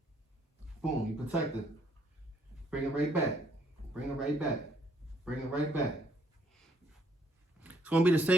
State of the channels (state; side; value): normal; both; correlation 0.68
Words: Boom, you protected. Bring it right back. Bring it right back. Bring it right back. It's gonna be the